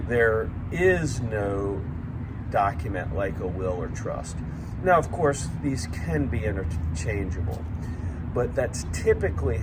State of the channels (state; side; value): identical; both; correlation 1.00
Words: there is no document like a will or trust. Now, of course, these can be interchangeable, but that's typically